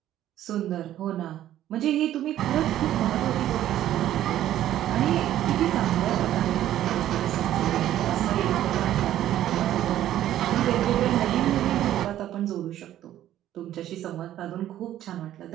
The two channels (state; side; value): quieter; left; 12.4 dB